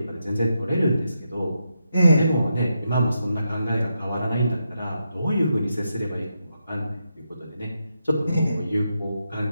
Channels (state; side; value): inverted; both; correlation -0.84